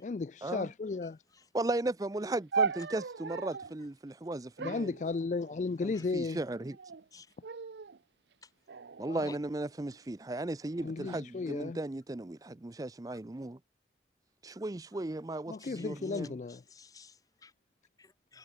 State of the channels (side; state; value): both; normal; correlation 0.39